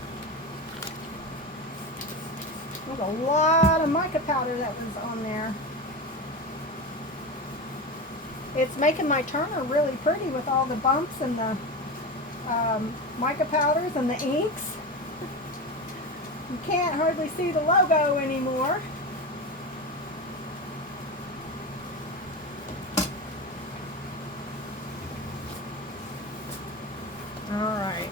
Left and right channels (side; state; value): both; normal; correlation 0.22